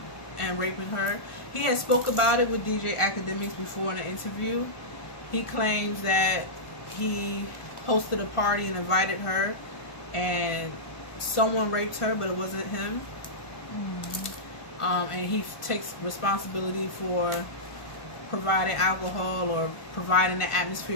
and raping her. He had spoke about it with DJ Academics before in an interview. He claims that he hosted a party and invited her, and someone raped her, but it wasn't him. And he takes responsibility for providing alcohol or providing the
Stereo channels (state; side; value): late; right; 1.4 ms